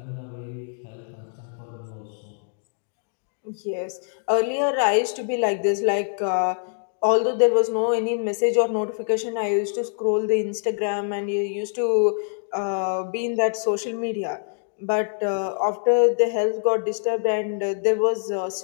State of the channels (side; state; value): right; silent; digital silence